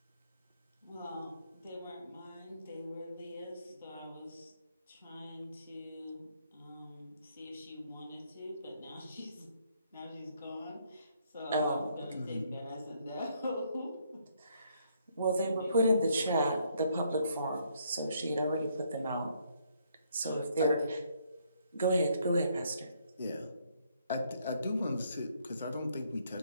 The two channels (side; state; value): both; inverted; correlation -0.70